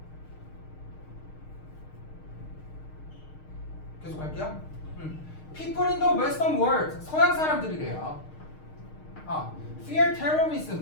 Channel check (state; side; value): late; right; 6.5 ms